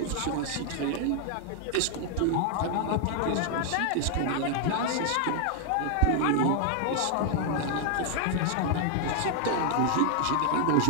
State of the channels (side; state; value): both; different; correlation 0.00